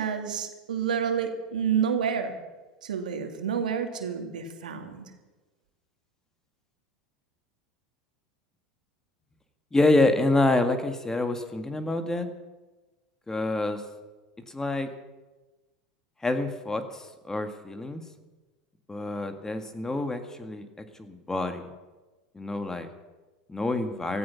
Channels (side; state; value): both; normal; correlation 0.54